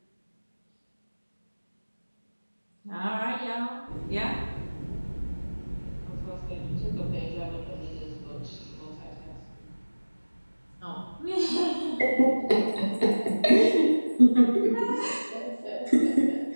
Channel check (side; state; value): both; inverted; correlation -1.00